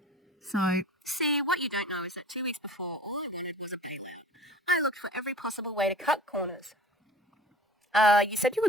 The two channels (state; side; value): normal; both; correlation 0.43